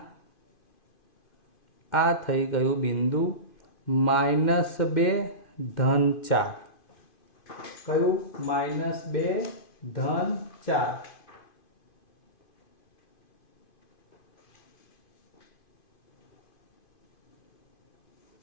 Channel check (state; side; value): late; right; 2.5 ms